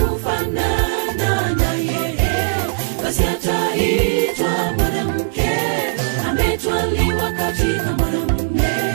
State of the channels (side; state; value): left; silent; digital silence